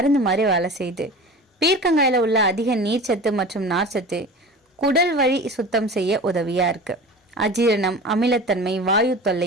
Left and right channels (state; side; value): normal; both; correlation 0.35